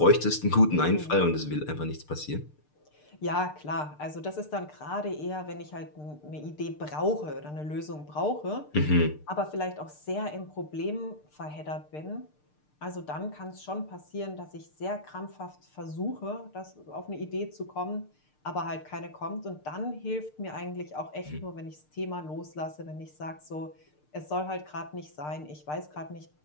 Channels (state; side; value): late; right; 6.6 ms